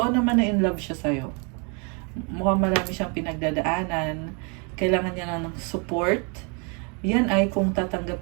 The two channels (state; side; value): quieter; left; 34.9 dB